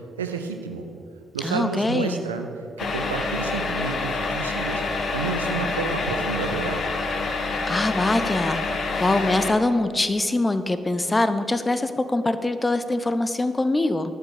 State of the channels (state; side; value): normal; both; correlation 0.80